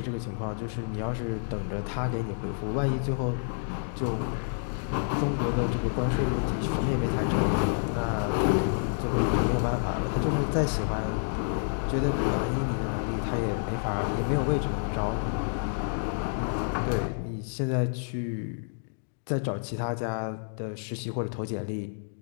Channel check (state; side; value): silent; right; digital silence